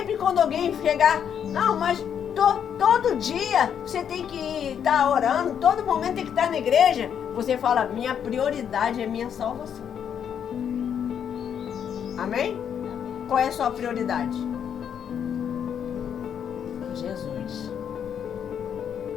quando alguém chegar, não, mas todo dia você tem que estar orando, todo momento tem que estar na igreja, você fala, minha prioridade é minha salvação. Amém? Qual é a sua prioridade? Jesus.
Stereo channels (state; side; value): quieter; right; 8.4 dB